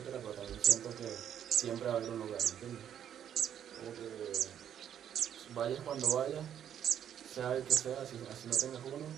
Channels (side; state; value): left; quieter; 9.5 dB